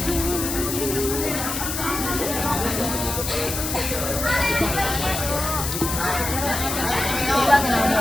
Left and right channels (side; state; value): left; noise; hiss, 3 dB below the sound